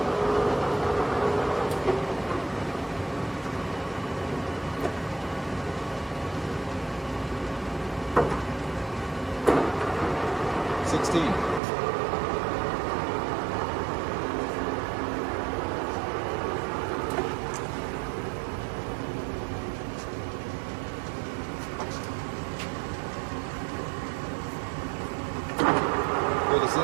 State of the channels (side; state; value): left; drops out; at 11.6 s